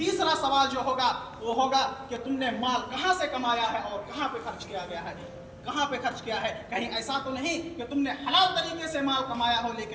سوال جو ہوگا وہ ہوگا کہ تم نے مال کہاں سے کمایا ہے اور کہاں پہ خرچ کیا گیا ہے؟ کہاں پہ خرچ کیا ہے؟ کہیں ایسا تو نہیں کہ تم نے حلال طریقے سے مال کمایا ہو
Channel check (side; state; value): both; identical; correlation 1.00